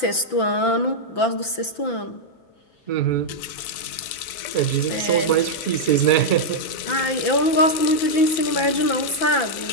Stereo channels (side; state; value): right; late; 5.8 ms